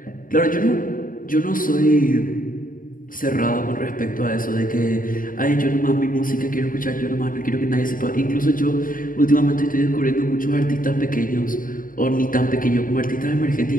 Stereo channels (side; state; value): right; late; 0.40 ms